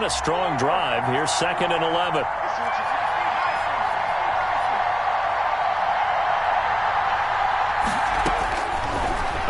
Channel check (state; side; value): identical; both; correlation 1.00